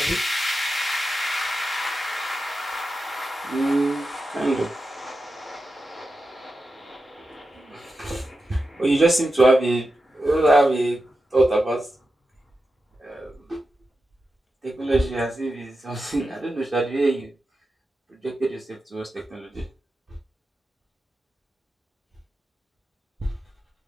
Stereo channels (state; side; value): normal; both; correlation 0.90